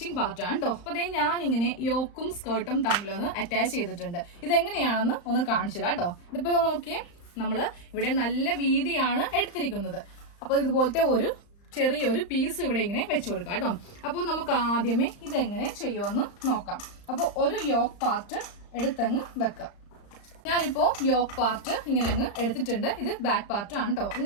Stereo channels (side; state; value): right; late; 35 ms